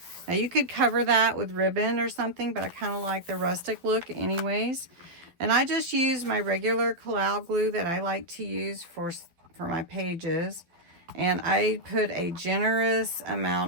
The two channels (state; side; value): late; left; 12 ms